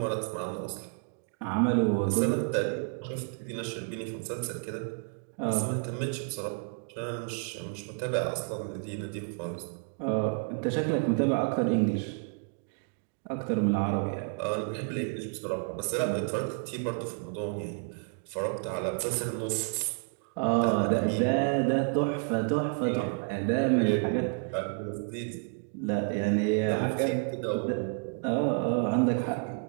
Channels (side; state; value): left; quieter; 39.3 dB